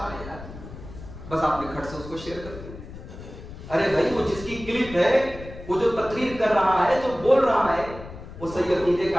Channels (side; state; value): left; noise; rumble, 14 dB below the sound